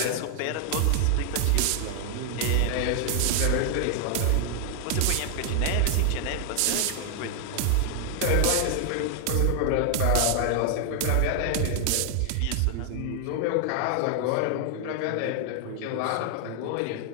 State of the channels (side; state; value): both; different; correlation 0.00